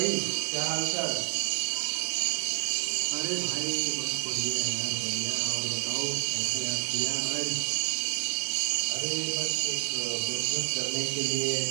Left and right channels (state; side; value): silent; left; 58 dB below the other